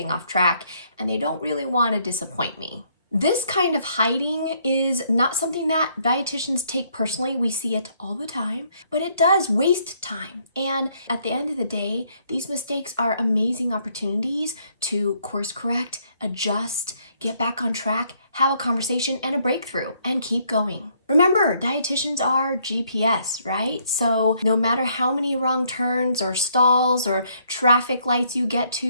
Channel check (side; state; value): both; inverted; correlation -0.69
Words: off track, and they don't really want to disappoint me. This kind of hiding is not something that dietitians take personally. We see it all the time, but it does waste time. And at the end of the day, these mistakes are amazing opportunities to course correct, adjust, get back on track, have a conversation and a breakthrough, and keep going. Remember, dietitians are GPS, right? So no matter how many wrong turns or stalls or traffic lights you get